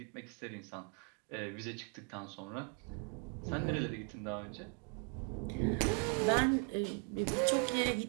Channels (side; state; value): left; quieter; 38.9 dB